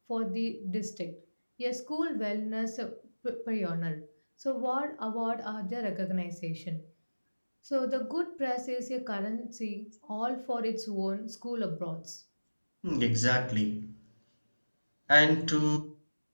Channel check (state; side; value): inverted; both; correlation -1.00